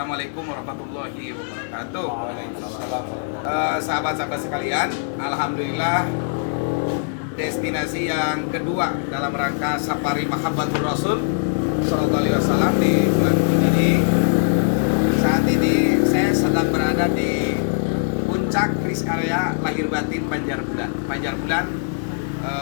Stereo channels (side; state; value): right; silent; digital silence